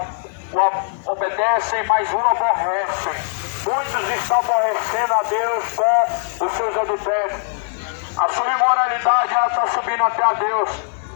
obedecem, mas o aborrecem. Muitos estão aborrecendo a Deus com os seus adultérios. A sua imoralidade, ela está subindo até a Deus.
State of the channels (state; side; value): silent; right; 66 dB below the other